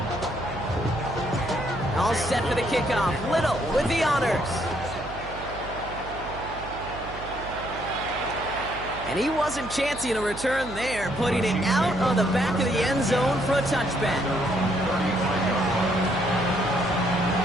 All set for the kickoff. Little with the honors. And he wasn't chancing a return there, putting it out on the back of the end zone for a touchback.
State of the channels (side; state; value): right; noise; hum, 13 dB below the sound